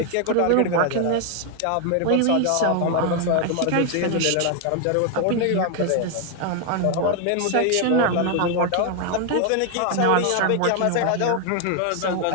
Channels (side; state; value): both; different; correlation 0.00